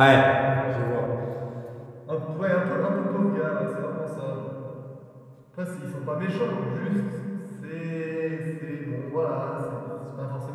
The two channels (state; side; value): identical; both; correlation 1.00